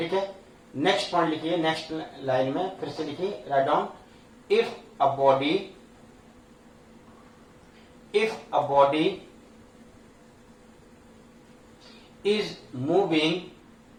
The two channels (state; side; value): identical; both; correlation 1.00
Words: है, नेक्स्ट पॉइंट लिखिए, नेक्स्ट लाइन में फिर से लिखिए, right down if a body is moving,